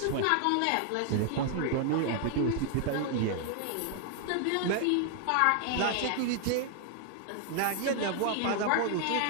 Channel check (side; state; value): both; different; correlation 0.00